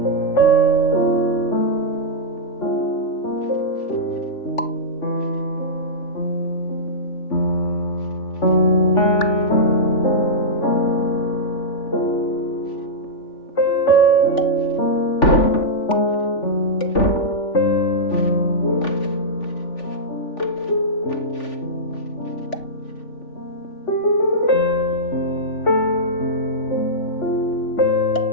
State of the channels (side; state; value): right; late; 3.4 ms